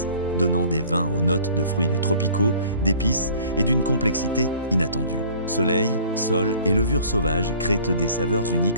donnant des vins aux notes de fruits tropicaux, d'épices et d'une complexité inattendue. Soleil, sol et levure sauvage créent des saveurs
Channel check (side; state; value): both; inverted; correlation -0.51